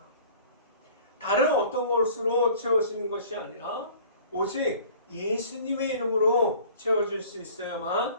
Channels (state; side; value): inverted; both; correlation -0.48